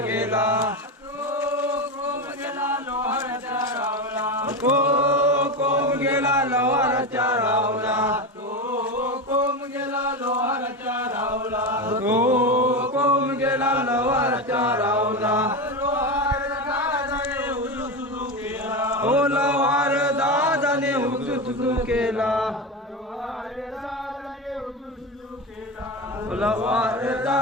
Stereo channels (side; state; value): both; normal; correlation 0.19